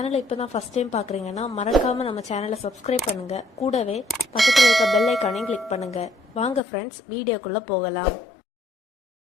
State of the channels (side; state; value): right; drops out; at 6.6 s